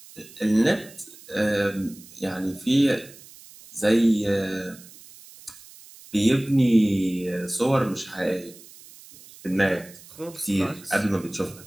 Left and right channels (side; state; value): right; noise; hiss, 21 dB below the sound